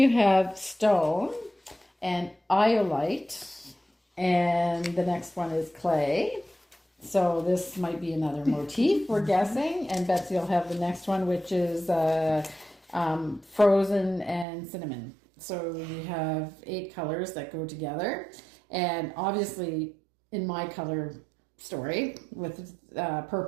have stone and iolite, and the next one is clay. So this might be another motif, we're guessing. And Betsy will have the next one, which is frozen and cinnamon. So we have 8 colors that go together, and obviously in my color story with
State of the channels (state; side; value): drops out; left; at 14.5 s